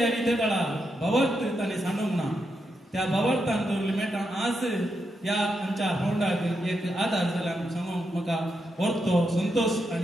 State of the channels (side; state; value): both; normal; correlation 0.84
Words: आनी ते काळा भवार्थ ताणें सांडूंक ना. त्या भवार्थान दवरले मेटां आज ह्या आमच्या फोंडाक एक आदार जाला सांगूंक म्हाका व्हरतो संतोष